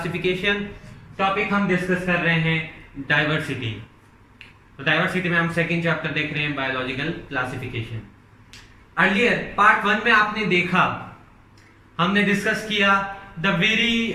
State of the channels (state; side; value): identical; both; correlation 1.00